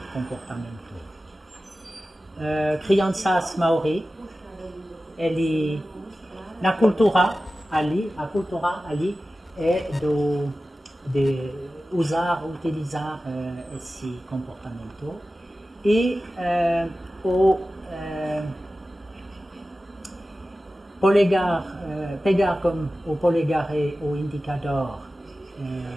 comportamento. Crianças maori, ele na cultura ali, a cultura ali é de utilizar esse comportamento e polegar, pegar como o polegar e o indicador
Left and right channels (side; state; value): both; normal; correlation 0.95